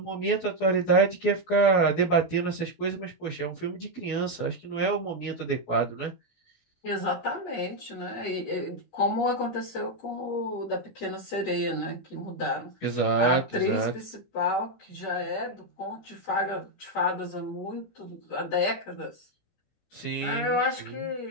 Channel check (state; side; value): late; right; 17 ms